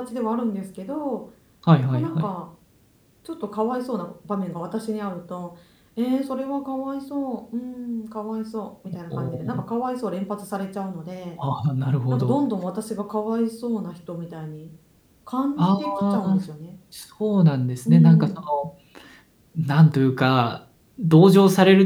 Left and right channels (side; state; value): both; identical; correlation 1.00